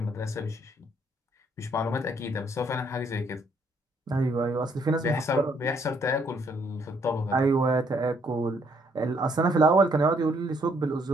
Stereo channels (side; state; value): both; normal; correlation 0.69